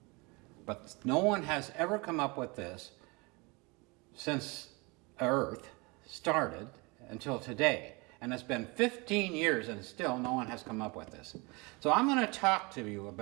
But no one has ever come up with this since Earth started until today. And it's been 15 years and still no one has come up with this. So I'm going to talk to you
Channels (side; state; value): left; quieter; 27.4 dB